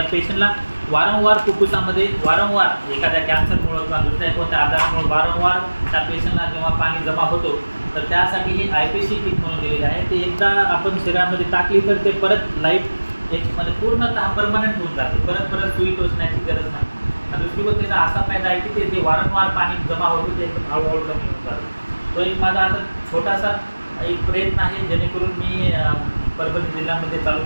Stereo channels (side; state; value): both; inverted; correlation -1.00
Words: पेशंटला वारंवार फुफ्फुसामध्ये वारंवार एखाद्या कॅन्सरमुळं किंवा दुसऱ्या कोणत्या आजारामुळे वारंवार त्या पेशंटला जेव्हा पाणी जमा होतो तर त्यासाठी ही IPC किट म्हणून दिलेली आहे. ते एकदा आपण शरीरामध्ये टाकली तर ते परत लाईफ एक म्हणजे पूर्णतः परमनंट होऊन जाते. परत सुई टोचण्याची गरज नाही. आणि दुसरी गोष्ट त्याचा असा फायदा आहे की ते जे वारंवार पाणी जमा होतं ते एकदम हळूहळू कमी होऊन जातं. तो एक माझा असा छोटासा एक प्रयत्न आहे जेणेकरून मी परभणी जिल्ह्यामध्ये चालू